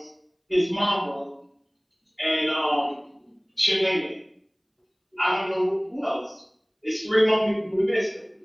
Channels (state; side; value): identical; both; correlation 1.00